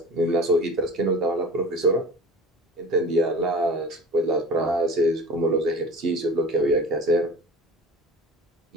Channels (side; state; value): both; normal; correlation 0.38